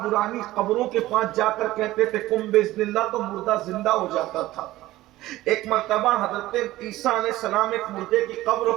قبروں کے پاس جا کر کہتے تھے کم باذن اللہ تو مردہ زندہ ہو جاتا تھا۔ ایک مرتبہ حضرت عیسیٰ علیہ السلام ایک مردے کی قبر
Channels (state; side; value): quieter; left; 16.6 dB